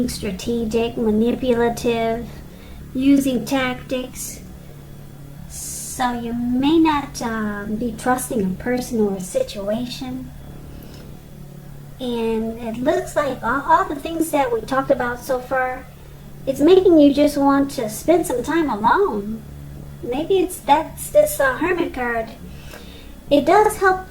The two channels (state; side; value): identical; both; correlation 1.00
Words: strategic, manipulative, using tactics. So you may not be trusting a person or a situation. And it looks like all the things that we talked about so far, it's making you just want to spend some time alone. Maybe that's this Hermit card. It does help.